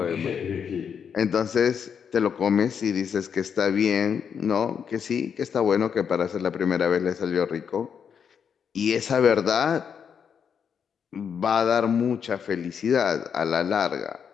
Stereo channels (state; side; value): quieter; right; 7.2 dB